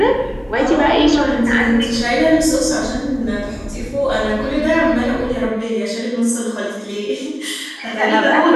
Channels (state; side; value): identical; both; correlation 1.00